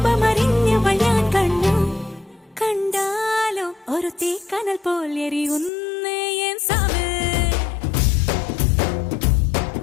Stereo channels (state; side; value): drops out; right; at 5.7 s